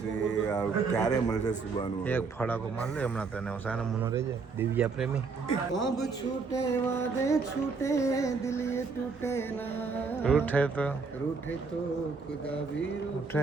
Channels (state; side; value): quieter; left; 4.7 dB